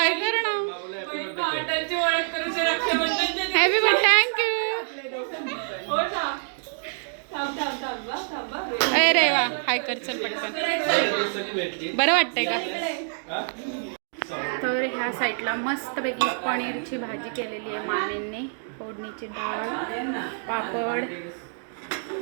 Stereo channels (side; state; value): left; silent; digital silence